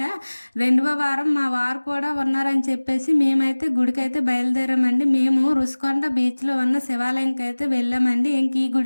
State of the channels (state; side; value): inverted; both; correlation -1.00